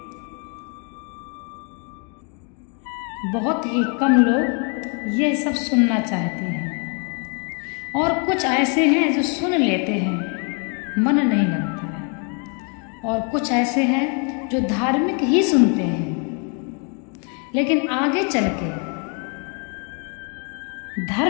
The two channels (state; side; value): quieter; right; 37.9 dB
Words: बहुत ही कम लोग ये सब सुनना चाहते हैं। और कुछ ऐसे हैं जो सुन लेते हैं, मन नहीं लगता है। और कुछ ऐसे हैं जो धार्मिक ही सुनते हैं, लेकिन आगे चल के